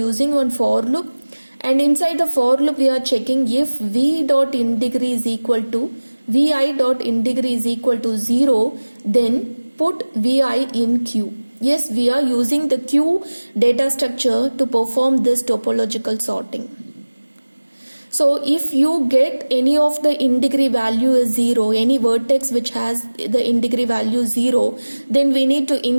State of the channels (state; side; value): inverted; both; correlation -1.00